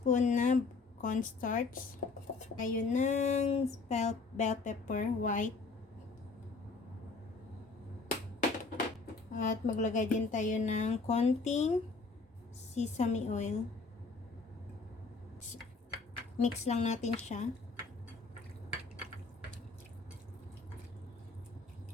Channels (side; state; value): right; quieter; 4.1 dB